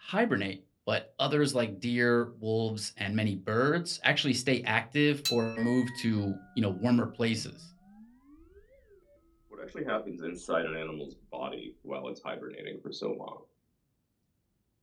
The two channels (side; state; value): both; identical; correlation 1.00